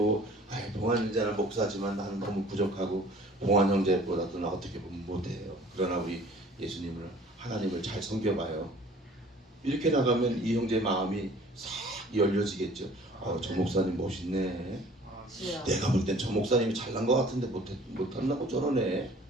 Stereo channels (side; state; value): both; normal; correlation 0.51